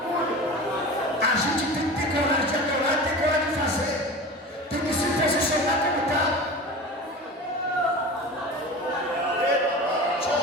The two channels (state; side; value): normal; both; correlation 0.33